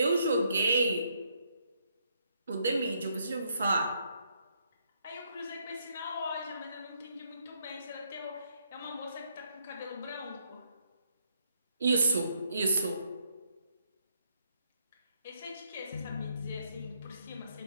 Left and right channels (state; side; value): inverted; both; correlation -0.74